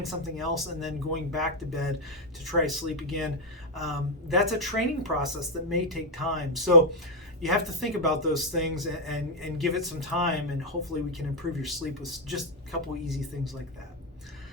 something else, and then going back to bed to try sleep again. That's a training process that may take time. So you have to think about those things and give it some time, and hopefully we can improve your sleep with just a couple easy things like that.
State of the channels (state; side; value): normal; both; correlation 0.00